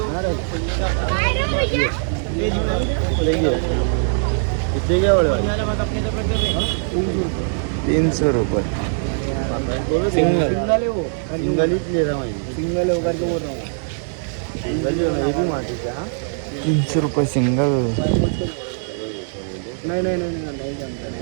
300 रुपये सिंगल। सिंगल ही ले रहा हूँ, सिंगल होकर के बोल रहा हूँ, सिंगल जो है ये भी माटी का। 300 रुपये सिंगल। नहीं जमता।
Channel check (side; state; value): left; silent; digital silence